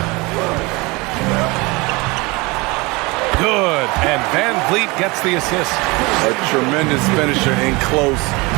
Good, and Van Vliet gets the assist. A tremendous finisher in close.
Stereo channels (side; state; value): left; quieter; 25.0 dB